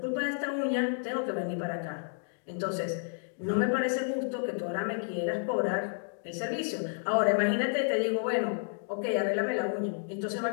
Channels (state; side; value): silent; right; digital silence